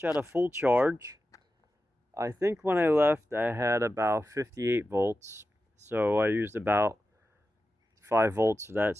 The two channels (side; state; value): both; normal; correlation 0.92